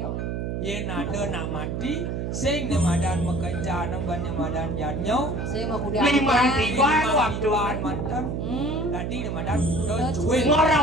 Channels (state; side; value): noise; right; hum, 3 dB below the sound